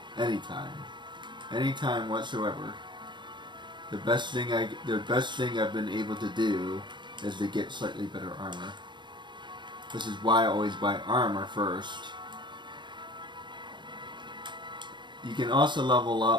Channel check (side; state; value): left; late; 0.22 ms